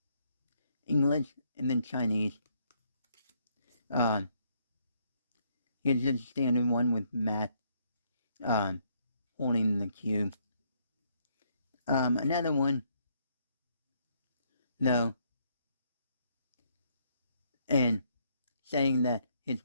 English, and then Chinese. Here's just a standard one with Matt, holding the cube. Another one, no, and saying that his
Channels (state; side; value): inverted; both; correlation -0.71